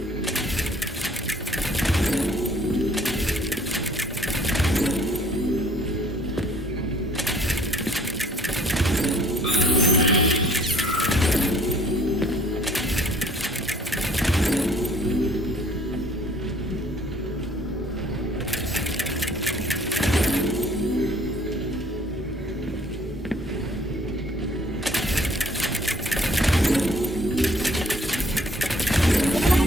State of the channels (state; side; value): normal; both; correlation 0.58